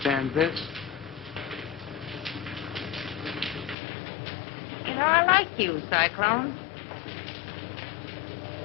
this? You know, I like you, Cyclone.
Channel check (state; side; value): drops out; right; at 3.8 s